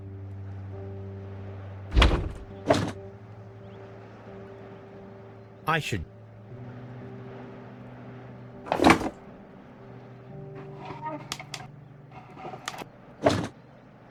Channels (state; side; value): identical; both; correlation 1.00